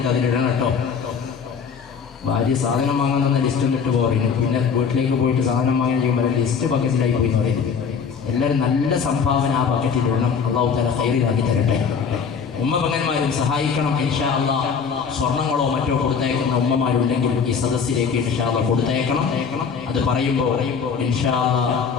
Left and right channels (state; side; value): quieter; right; 6.3 dB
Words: അതിലിടണം കേട്ടോ. ഭാര്യ സാധനം വാങ്ങാൻ ലിസ്റ്റ് ഇട്ട് പോകുന്നു, പിന്നെ വീട്ടിലേക്ക് പോയിട്ട് സാധനം വാങ്ങാൻ ചെയ്യുമ്പോൾ ലിസ്റ്റ് ബക്കറ്റിലായി പോയി എന്ന് പറയുന്നത്. എല്ലാവരും നല്ല സംഭാവന ആ ബക്കറ്റിലിടണം. അള്ളാഹു തആല ഖൈറിലാക്കി തരട്ടെ. ഉമ്മപങ്ങന്മാരും സഹായിക്കണം ഇൻഷാ അല്ലാഹ്. സ്വർണ്ണങ്ങളോ മറ്റോ കൊടുത്തയക്കുന്ന ഉമ്മമാരുണ്ടെങ്കിൽ ഈ സദസ്സിലേക്ക് ഇൻഷാ അല്ലാഹ് കൊടുത്തയക്കണം. അത് പറയുമ്പോൾ ഇൻഷാ